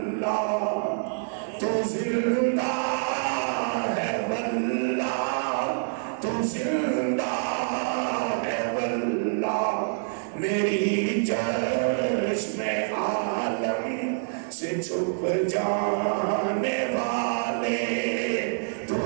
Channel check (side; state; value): left; silent; digital silence